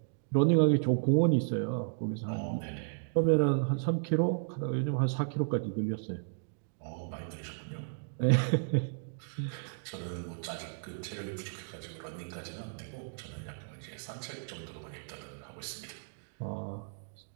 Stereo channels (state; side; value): silent; left; digital silence